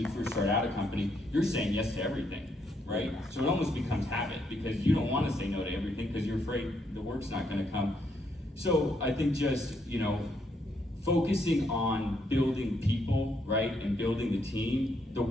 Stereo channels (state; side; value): normal; both; correlation 0.75